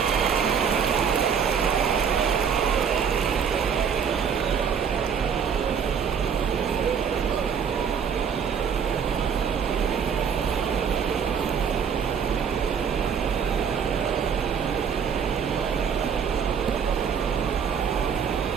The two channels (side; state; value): left; quieter; 7.1 dB